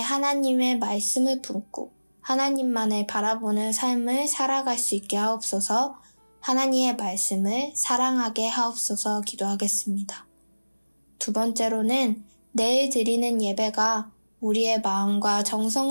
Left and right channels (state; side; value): inverted; both; correlation -1.00